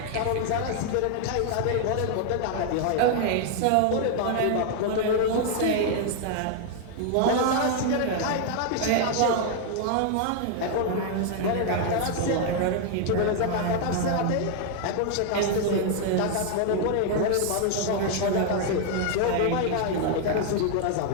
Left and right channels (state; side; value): different; both; correlation 0.00